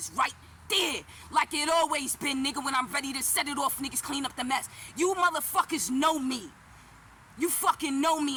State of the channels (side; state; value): both; identical; correlation 1.00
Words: right there, like it always been, nigga. When I'm ready to set it off, niggas clean up the mess. You motherfuckers know me. You fucking know